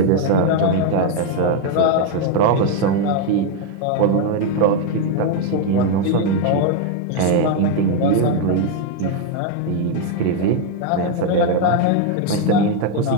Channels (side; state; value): both; different; correlation 0.01